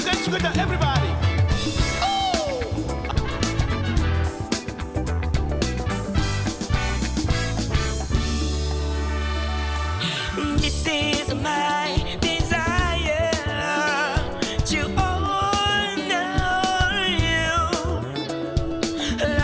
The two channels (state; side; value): identical; both; correlation 1.00